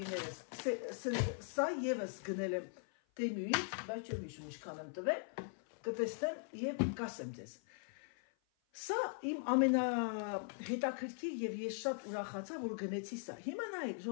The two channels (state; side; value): silent; right; 51 dB below the other